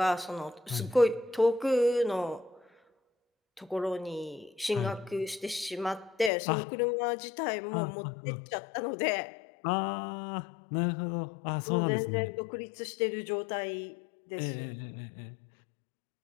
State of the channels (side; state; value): right; drops out; at 6.3 s